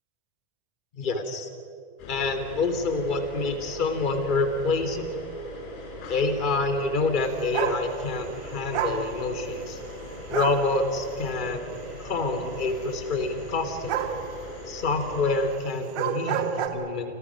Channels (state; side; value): late; right; 2.3 ms